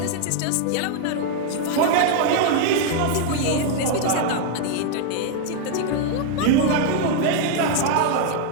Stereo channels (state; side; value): different; both; correlation 0.00